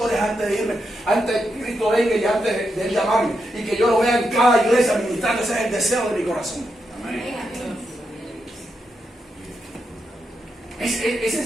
antes de irme, antes de que Cristo venga y antes de él llamarme, y que yo lo vea en cada iglesia ministrando. Ese es el deseo de mi corazón. Esa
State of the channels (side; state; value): both; normal; correlation 0.84